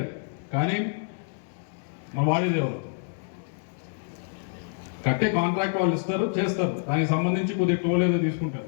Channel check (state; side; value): silent; right; digital silence